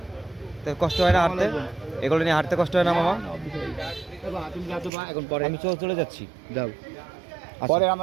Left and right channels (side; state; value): left; drops out; at 4.9 s